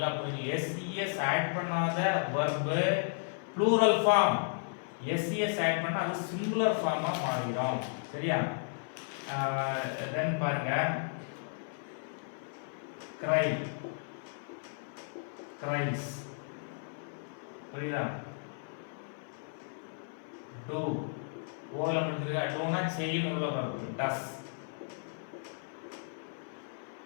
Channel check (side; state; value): right; silent; 55 dB below the other